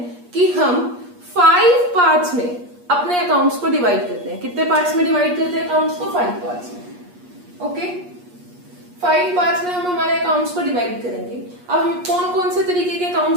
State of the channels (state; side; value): late; left; 8.4 ms